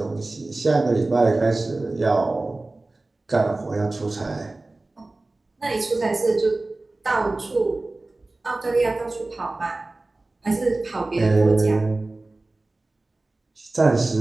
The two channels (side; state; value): left; quieter; 3.1 dB